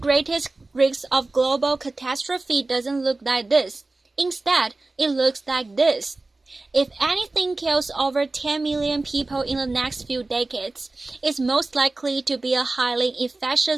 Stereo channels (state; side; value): quieter; left; 3.2 dB